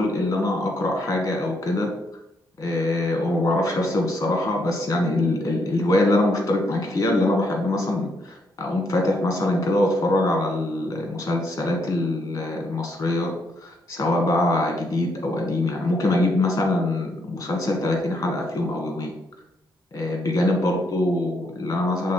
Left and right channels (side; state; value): both; normal; correlation 0.74